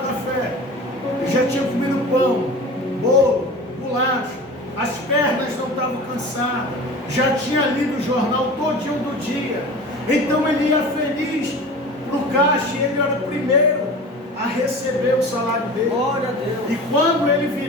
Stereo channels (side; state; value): both; normal; correlation 0.36